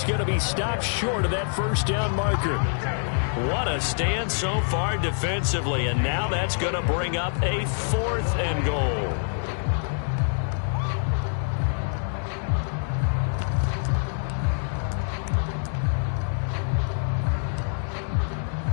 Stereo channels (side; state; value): right; silent; digital silence